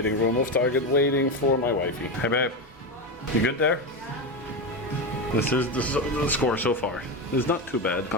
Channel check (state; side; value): normal; both; correlation 0.15